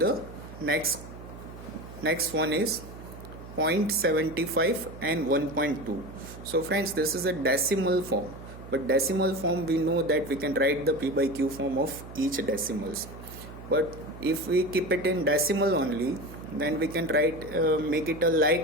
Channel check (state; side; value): noise; right; hum, 14 dB below the sound